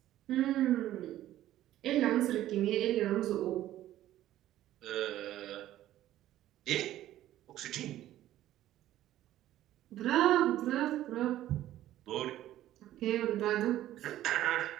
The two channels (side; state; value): left; quieter; 13.5 dB